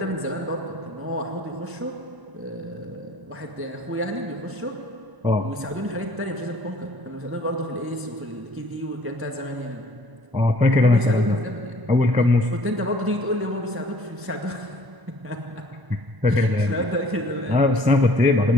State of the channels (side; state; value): left; late; 1.0 ms